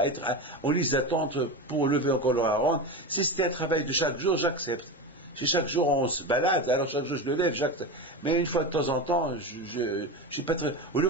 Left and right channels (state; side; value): normal; both; correlation 0.22